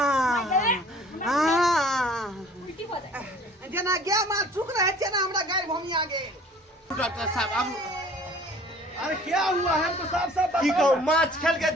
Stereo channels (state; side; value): normal; both; correlation 0.51